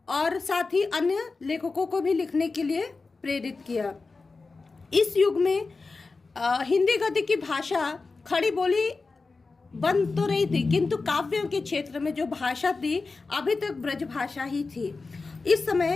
और साथ ही अन्य लेखकों को भी लिखने के लिए प्रेरित किया। इस युग में हिंदी गद्य की भाषा खड़ी बोली बन तो रही थी, किंतु काव्यों के क्षेत्र में जो भाषा थी अभी तक ब्रज भाषा ही थी। इस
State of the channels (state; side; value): quieter; right; 4.0 dB